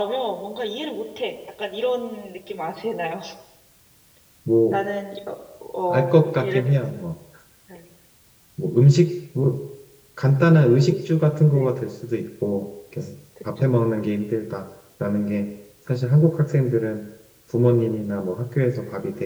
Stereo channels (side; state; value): both; identical; correlation 1.00